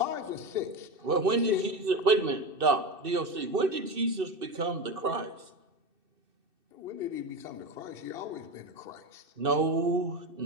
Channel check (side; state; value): left; late; 2.6 ms